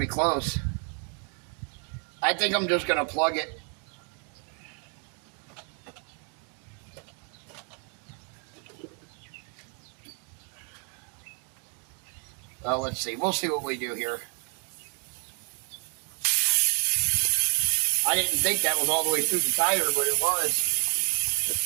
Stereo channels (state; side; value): quieter; left; 37.0 dB